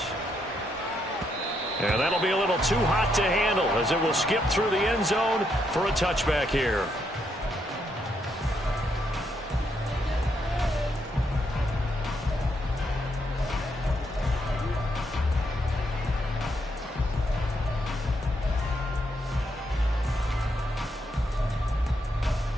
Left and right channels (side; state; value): both; normal; correlation 0.77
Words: And that'll be a little too hot to handle, as it will skip through the end zone for a touchback here.